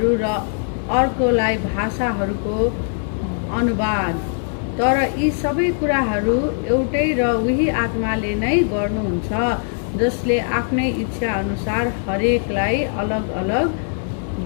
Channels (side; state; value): right; silent; digital silence